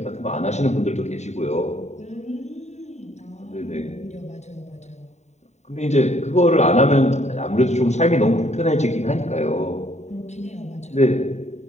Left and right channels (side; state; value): right; late; 0.33 ms